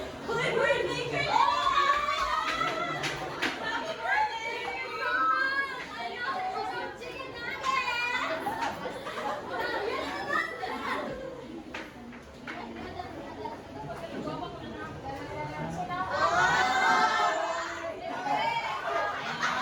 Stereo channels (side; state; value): both; identical; correlation 1.00